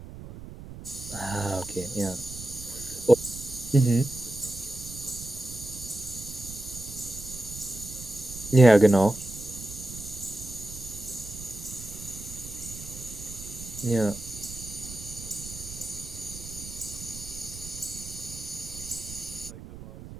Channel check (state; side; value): noise; right; rumble, 12 dB below the sound